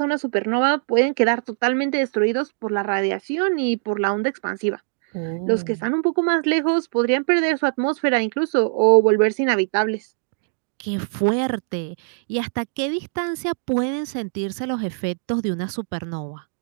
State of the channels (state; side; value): silent; left; digital silence